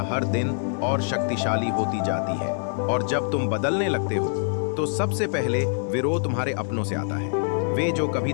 हर दिन और शक्तिशाली होती जाती है। और जब तुम बदलने लगते हो तो सबसे पहले विरोध तुम्हारे अपनों से आता है। वे जो कभी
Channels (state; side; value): silent; right; 62 dB below the other